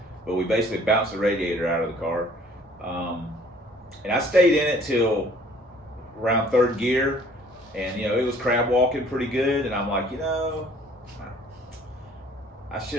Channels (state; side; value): normal; both; correlation 0.56